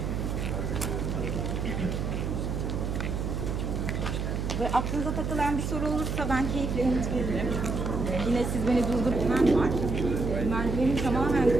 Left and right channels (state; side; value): noise; right; hum, 2 dB below the sound